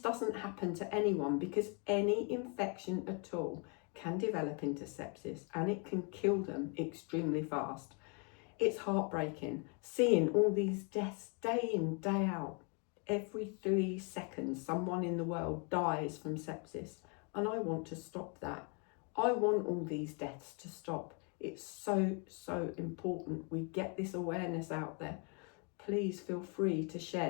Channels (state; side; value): quieter; right; 35.8 dB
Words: happen to anyone, because any infection at all can develop into sepsis and it can kill them extremely fast. It's heartbreaking seeing all these deaths day in, day out. Every 3 seconds, someone in the world dies from sepsis, and I want to stop that. I want all these deaths to stop. It's so, so important we get this awareness out there. Please feel free to